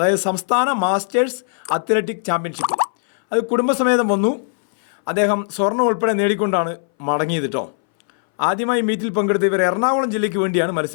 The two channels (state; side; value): silent; right; 62 dB below the other